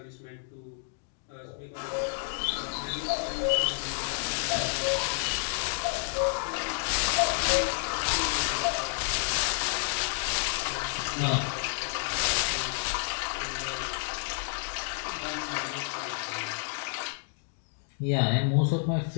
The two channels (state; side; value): silent; right; digital silence